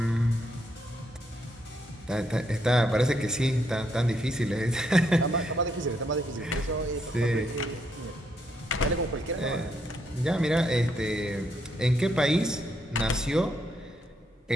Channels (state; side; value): normal; both; correlation 0.76